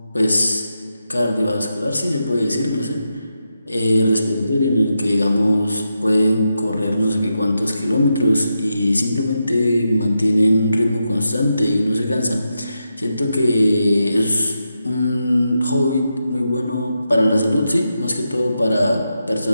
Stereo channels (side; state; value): both; inverted; correlation -0.87